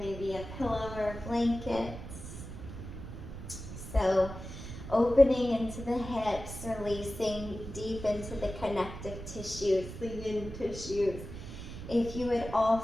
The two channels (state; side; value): noise; right; rumble, 10 dB below the sound